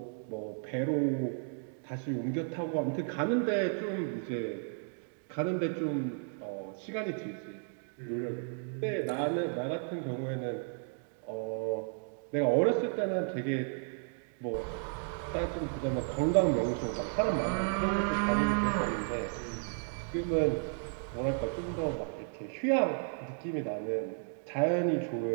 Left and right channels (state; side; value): silent; left; 55 dB below the other